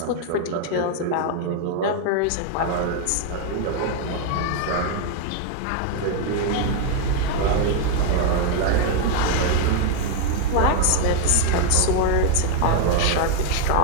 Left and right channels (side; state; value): both; different; correlation 0.00